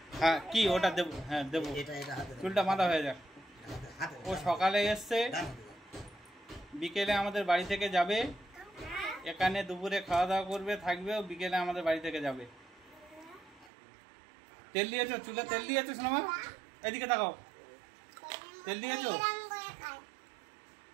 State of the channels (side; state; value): left; drops out; at 13.7 s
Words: হ্যাঁ কি ওটা দেবো? হ্যাঁ দেবো, চুলটা বাঁধা হয়ে যাক। ও সকালে এসছে, বিকেলে আমাদের বাড়ি থেকে যাবে, এখানে দুপুরে খাওয়া দাওয়া করবে, থাকবে, ও বিকেলে আমাদের বাড়ি থেকে যাবে। তেল দিয়েছো চুলে? তেল দিয়েছো সোনামা? এদিকে তাকাও, তেল দিয়েছো?